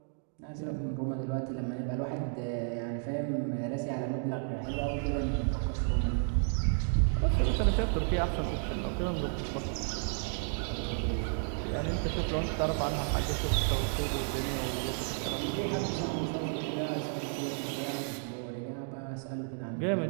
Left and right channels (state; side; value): silent; left; 56 dB below the other